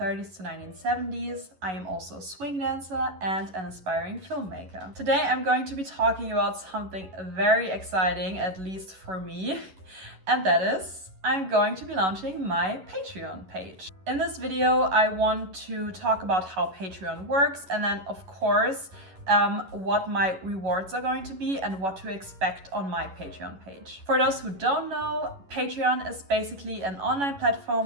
to 1970s. I am also a swing dancer and an aspiring filmmaker. Today I'm going to be talking about something very exciting, at least for me, and that is I'm going to be launching my Patreon page. In this video, I want to talk about how Patreon works and then, of course, what my rewards are going to be and what to expect on my Patreon page. For those who don't know, Patreon is basically an online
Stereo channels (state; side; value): late; left; 11 ms